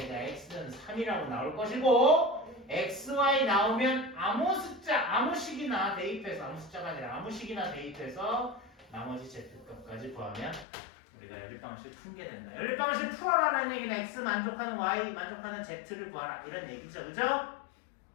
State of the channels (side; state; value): right; drops out; at 10.7 s